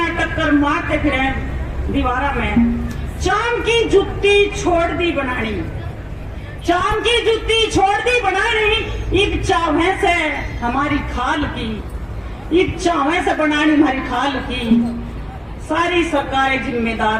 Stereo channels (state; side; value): identical; both; correlation 1.00